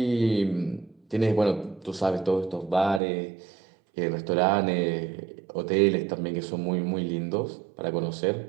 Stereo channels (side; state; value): left; drops out; at 3.0 s